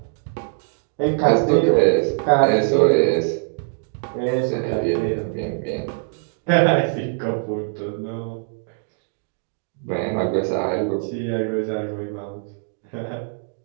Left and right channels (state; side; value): silent; left; 64 dB below the other